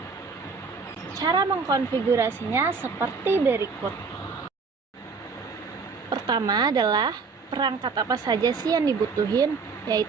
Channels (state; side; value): quieter; left; 4.9 dB